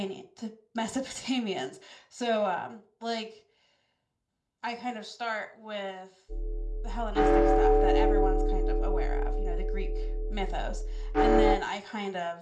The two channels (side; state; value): both; identical; correlation 1.00